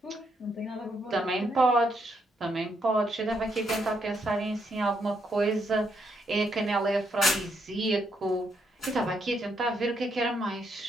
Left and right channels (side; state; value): both; normal; correlation 0.76